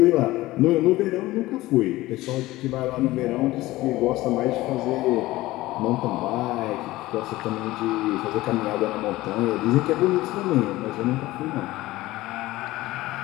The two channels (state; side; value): quieter; right; 17.9 dB